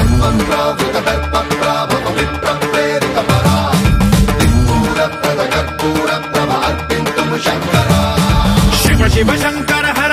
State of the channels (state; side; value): identical; both; correlation 1.00